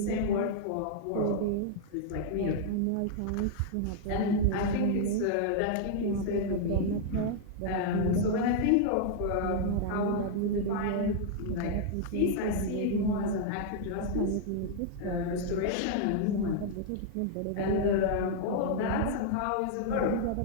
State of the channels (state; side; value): different; both; correlation -0.01